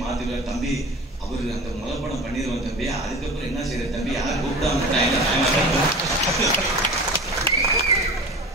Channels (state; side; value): normal; both; correlation 0.36